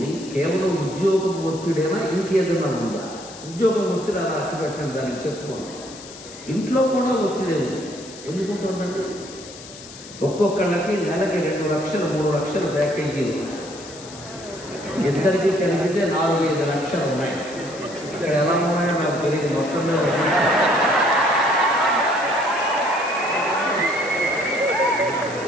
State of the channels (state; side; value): noise; left; hiss, 16 dB below the sound